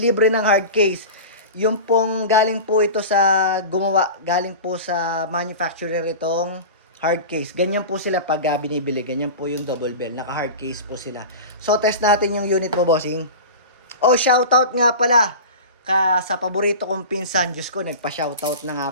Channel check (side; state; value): both; inverted; correlation -0.31